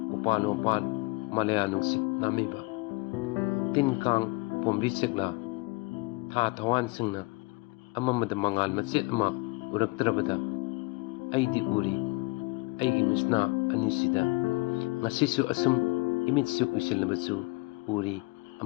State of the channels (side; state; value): right; quieter; 25.3 dB